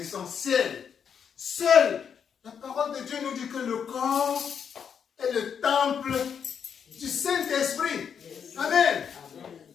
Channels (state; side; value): quieter; right; 7.4 dB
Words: Seule la parole de Dieu nous dit que le corps est le temple du Saint-Esprit. Amen.